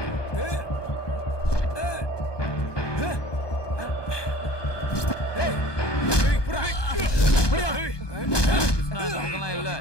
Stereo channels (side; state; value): right; late; 1.2 ms